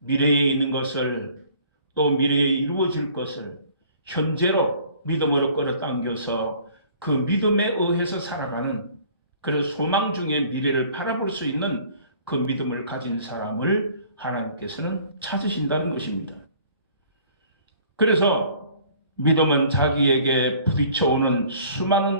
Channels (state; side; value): inverted; both; correlation -0.53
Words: 있는 것을 또 미래에 이루어질 것을 현재로 믿음으로 끌어당겨서 그 믿음에 의해서 살아가는 그래서 소망 중에 미래를 바라볼 수 있는 그 믿음을 가진 사람을 하나님께서는 찾으신다는 것입니다. 그래서 믿음은 자기에게 부딪혀오는